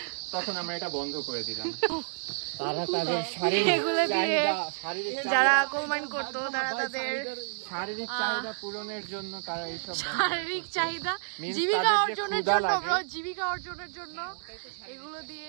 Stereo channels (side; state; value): left; silent; 55 dB below the other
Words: তখন আমরা এটা বন্ধ করে দিলাম। তারা তাদের যারা কোল মাইন করতো তারা তাদের শারীরিক চাহিদা পূরণের জন্য তারা এইসব শারীরিক চাহিদা, জীবিকা অর্জনের জন্য ব্রো, জীবিকা অর্জনের জন্য